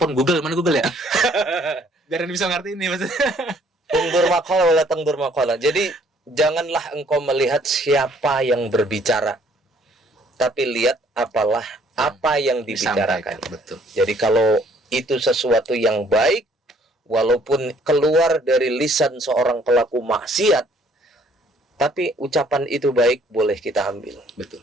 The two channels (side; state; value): both; normal; correlation 0.61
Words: Google, mana Google ya? Biar bisa ngerti ini maksudnya. Ungdur maqala wala tangdur maqala. Jadi janganlah engkau melihat siapa yang berbicara, tapi lihat apa yang dibicarakan. Betul. Jadi kalau itu sesuatu yang baik, walaupun keluar dari lisan seorang pelaku maksiat, tapi ucapan itu baik, boleh kita ambil. Betul.